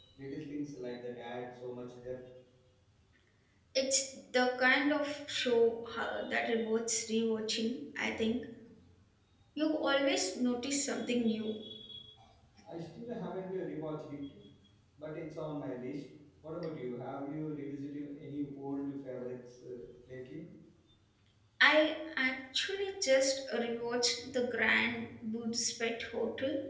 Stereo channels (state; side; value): identical; both; correlation 1.00